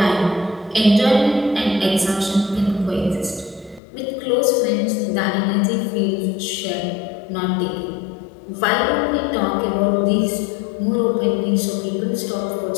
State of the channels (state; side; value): drops out; right; at 3.8 s